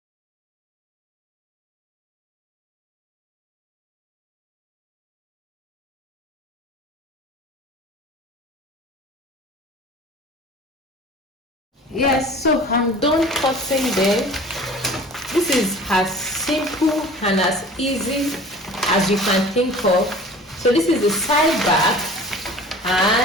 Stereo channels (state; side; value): normal; both; correlation 0.43